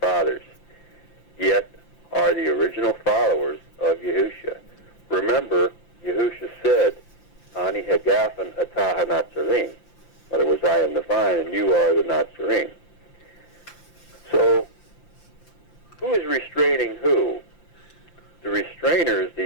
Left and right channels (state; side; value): late; right; 5.8 ms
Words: fathers, yet are the original followers of Yahusha. Remember, Yahusha said, Ani hagafen atah Natsarim. In other words, I am the vine and you are the Natsarim. So, who is restraining who? The restrainer is